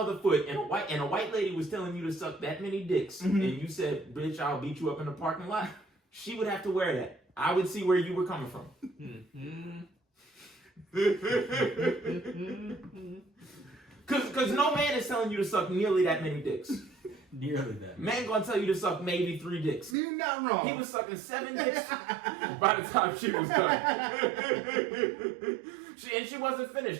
foot and a white lady was telling you to suck that many dicks, and you said, "Bitch, I'll beat you up in the parking lot," she would have to wear that. I would see where you were coming from. Cause no man is telling you to suck nearly that many dicks. Nearly that. Man gonna tell you to suck maybe 3 dicks. You're not wrong. He was sucking 7 dicks by the time she was done. She wasn't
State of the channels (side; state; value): left; drops out; at 20.0 s